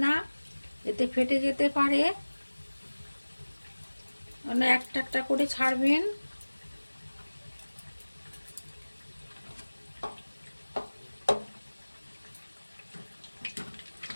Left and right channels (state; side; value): inverted; both; correlation -1.00